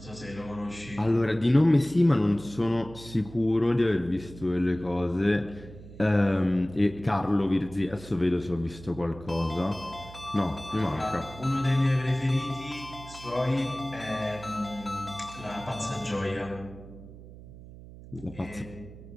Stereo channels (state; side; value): noise; right; hum, 17 dB below the sound